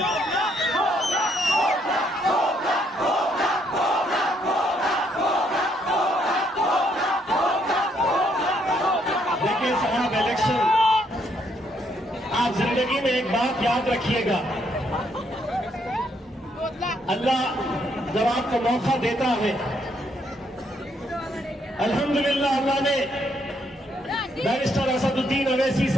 देखिए साहब, इलेक्शन, आप जिंदगी में एक बात याद रखिएगा, अल्लाह जब आपको मौका देता है, अल्हम्दुलिल्लाह अल्लाह ने बैरिस्टर असदुद्दीन अवैसी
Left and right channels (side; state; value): both; normal; correlation 0.72